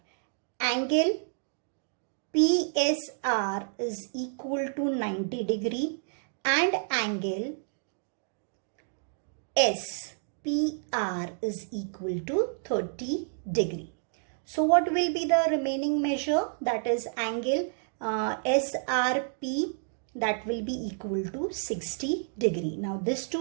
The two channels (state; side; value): silent; left; digital silence